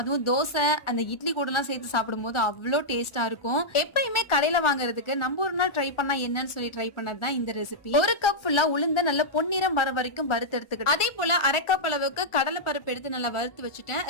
தோசை, அந்த இட்லி கூடலாம் சேர்த்து சாப்பிடும்போது அவ்ளோ டேஸ்ட்டா இருக்கும். எப்பயுமே கடையில வாங்குறதுக்கு நம்ம ஒரு நாள் ட்ரை பண்ணா என்னன்னு சொல்லி ட்ரை பண்ணது தான் இந்த ரெசிபி. 1 கப் ஃபுல்லா உளுந்த நல்ல பொன்னிறம் வர வரைக்கும் வறுத்து எடுத்துக்கிட்டேன். அதே போல 1/2 கப் அளவுக்கு கடலை பருப்பு எடுத்து நல்லா வறுத்து வச்சுட்டேன்.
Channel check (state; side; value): late; right; 1.4 ms